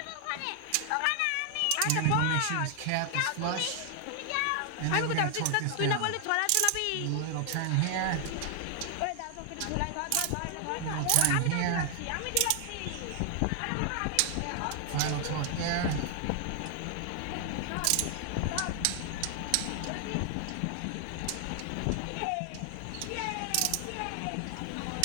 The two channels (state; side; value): different; both; correlation 0.00